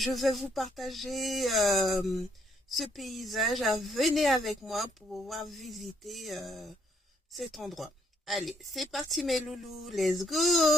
vais vous partager ce paysage. Venez avec moi pour pouvoir visiter cet endroit. Allez, c'est parti mes loulous, let's go!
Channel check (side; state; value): both; normal; correlation 0.70